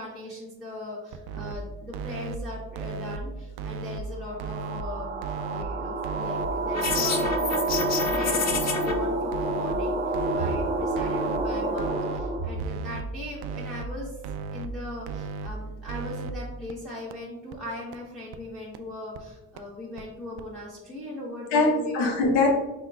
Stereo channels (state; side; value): normal; both; correlation 0.19